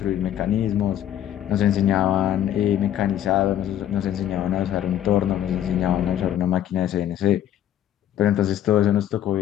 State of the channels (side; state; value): right; quieter; 11.1 dB